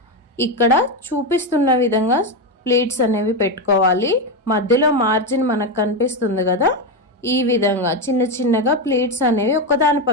ఇక్కడ చూపిస్తున్న విధంగా ప్లీట్స్ అనేవి పెట్టుకోవాలి. మధ్యలో మార్జిన్ మనకు కనిపిస్తుంది కదా, ఈ విధంగా చిన్న చిన్నగా ప్లీట్స్ అనేవి ఒకదాని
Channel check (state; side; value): normal; both; correlation 0.10